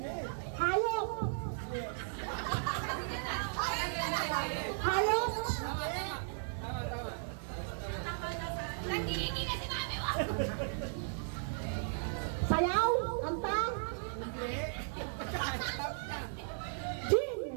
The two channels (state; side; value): silent; left; digital silence